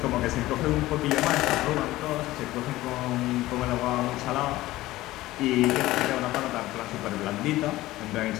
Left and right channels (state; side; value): quieter; right; 17.0 dB